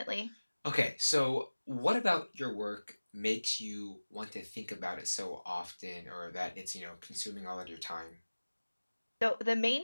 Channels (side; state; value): both; inverted; correlation -1.00